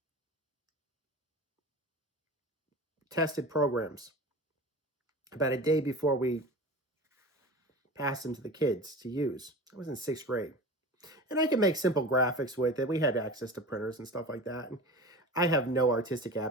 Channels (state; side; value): normal; both; correlation 0.33